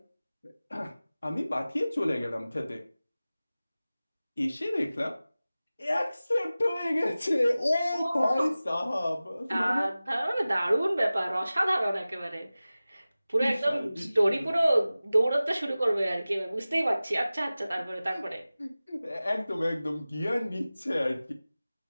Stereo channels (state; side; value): inverted; both; correlation -0.97